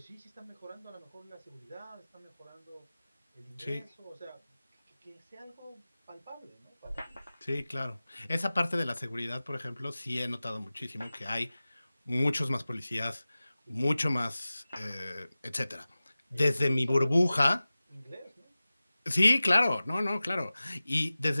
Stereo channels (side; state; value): both; inverted; correlation -0.97